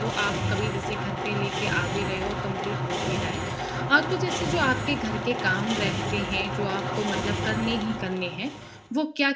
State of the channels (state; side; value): identical; both; correlation 1.00